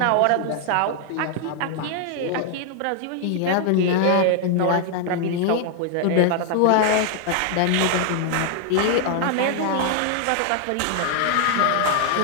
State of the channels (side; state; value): both; different; correlation 0.00